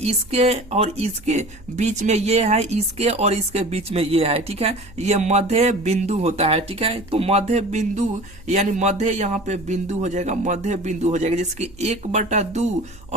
और इसके बीच में ये है, इसके और इसके बीच में ये है, ठीक है। ये मध्य बिंदु होता है, ठीक है। तो मध्य बिंदु यानी मध्य यहाँ पे बिंदु हो जाएगा, मध्य बिंदु हो जाएगा, जिसके 1/2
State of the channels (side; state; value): right; noise; hum, 22 dB below the sound